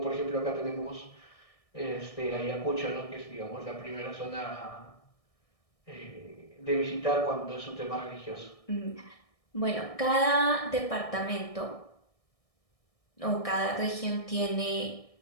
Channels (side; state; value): right; late; 1.6 ms